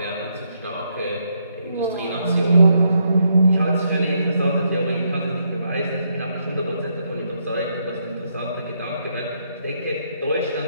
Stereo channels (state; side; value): inverted; both; correlation -0.76